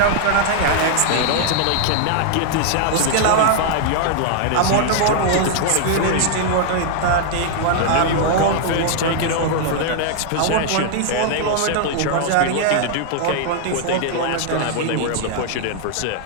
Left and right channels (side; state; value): both; different; correlation -0.01